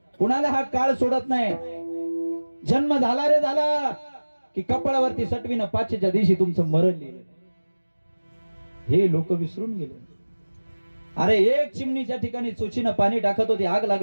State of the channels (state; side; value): inverted; both; correlation -1.00